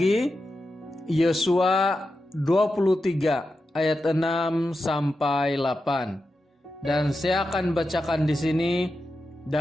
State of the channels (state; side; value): normal; both; correlation 0.90